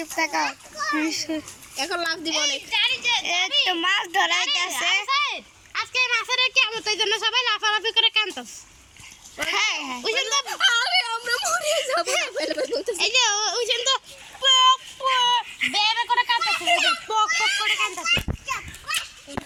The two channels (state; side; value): identical; both; correlation 1.00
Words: থাকো, এখন লাভ দিব অনেক। এই তো মাছ ধরা হইতাছে। আজকে মাছের কিয়ামত, এই জন্য সবাই লাফালাফি করে কাঁদতাছে। হ্যাঁ ওই জন্য আরে আমরা মরে যাব না ফেলে বলতেছে। এই যে ওই জন্য পক পক বেবে করে কাঁদতাছে, পক পক করে কাঁদতাছে।